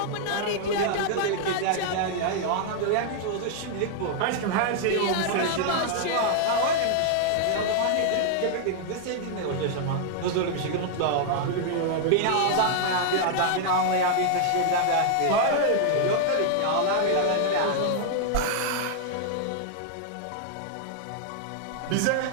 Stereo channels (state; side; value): different; both; correlation -0.01